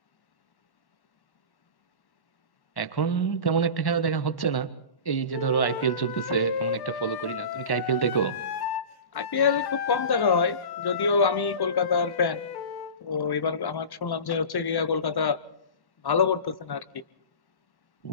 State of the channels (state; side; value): late; right; 1.1 ms